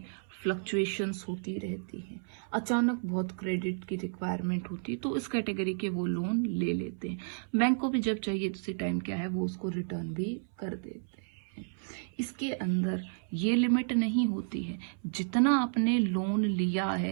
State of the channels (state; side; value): silent; left; 56 dB below the other